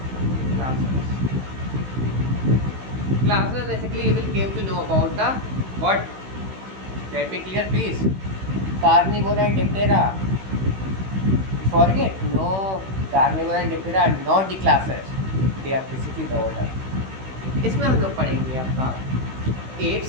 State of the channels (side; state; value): left; late; 16 ms